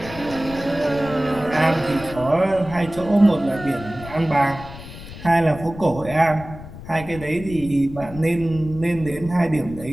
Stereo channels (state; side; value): noise; left; rumble, 14 dB below the sound